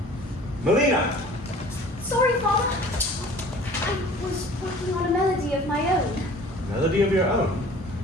Melina! Sorry, Father. I was working on a melody of my own. Melody of your own?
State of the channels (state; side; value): normal; both; correlation 0.47